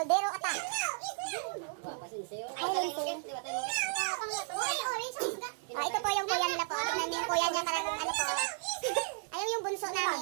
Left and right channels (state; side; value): silent; left; digital silence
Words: Attack. Kumapa si Lindsay. Ay, Lindsay. Ito po yung kuya nila po. Tignan niyo yung kuya niya karang ano po. Ayun yung bunso